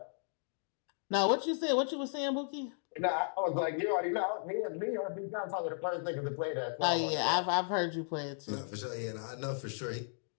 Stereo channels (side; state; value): right; silent; digital silence